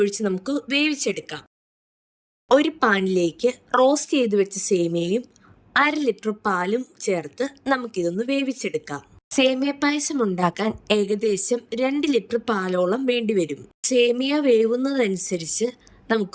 നമുക്ക് വേവിച്ചെടുക്കാം. ഒരു പാനിലേക്ക് റോസ്റ്റ് ചെയ്ത് വെച്ച സേമിയയും 1/2 ലിറ്റർ പാലും ചേർത്ത് നമുക്കിതൊന്ന് വേവിച്ചെടുക്കാം. സേമിയ പായസം ഉണ്ടാക്കാൻ ഏകദേശം 2 ലിറ്റർ പാലോളം വേണ്ടിവരും. സേമിയ വേവുന്നതനുസരിച്ച്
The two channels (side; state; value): both; identical; correlation 1.00